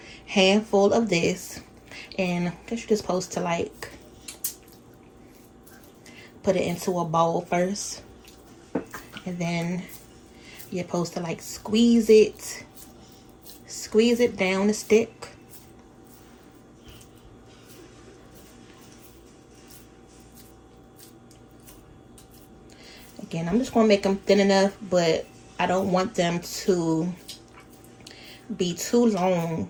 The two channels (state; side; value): identical; both; correlation 1.00